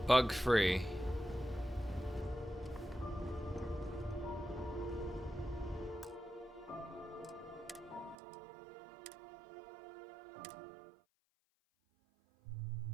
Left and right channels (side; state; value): left; drops out; at 8.2 s